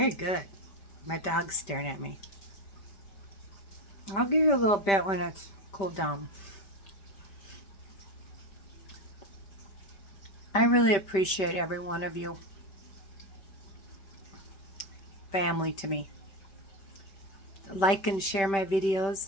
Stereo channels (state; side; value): late; right; 5.1 ms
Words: good. My dog's staring at me. I'll give you a little bit when it's cooled down. I really appreciate every one of you. Family to me. Like and share my